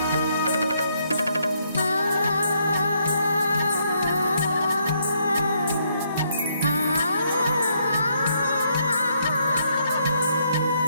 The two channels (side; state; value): both; inverted; correlation -0.73